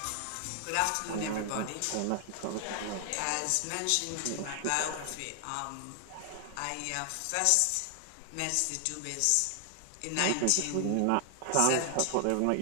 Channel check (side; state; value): both; different; correlation 0.00